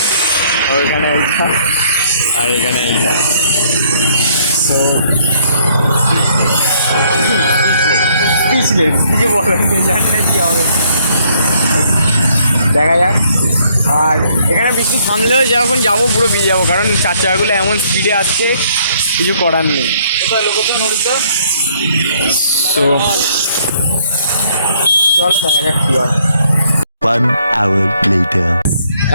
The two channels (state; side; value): inverted; both; correlation -0.65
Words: ওইখানে এইটা আর এখানে এইটা। তো পিছলে কিছু বলার নেই, জানি না কী হবে, দেখা যাক। আর এখানে বৃষ্টি থামলেও যখন যাবো পুরো ভিজে যাবো, কারণ চার চাকাগুলো এমন স্পিডে আসছে, কিছু করার নেই। তো চলো দেখা যাক কী হয়। 1 hour later.